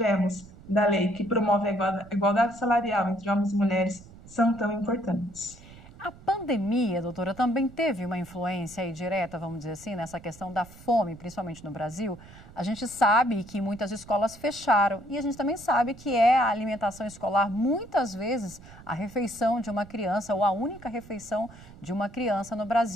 da lei que promove a igualdade salarial entre homens e mulheres são tão importantes. A pandemia, doutora, também teve uma influência aí direta, vamos dizer assim, nessa questão da fome, principalmente no Brasil. A gente sabe que muitas escolas fecharam e a gente também sabe que a alimentação escolar, muitas vezes, a refeição de uma criança ou a única refeição de uma criança no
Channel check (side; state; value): right; noise; rumble, 20 dB below the sound